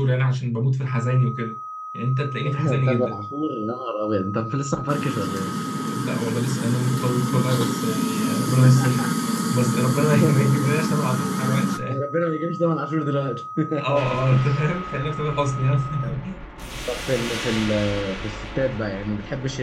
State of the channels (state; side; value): identical; both; correlation 1.00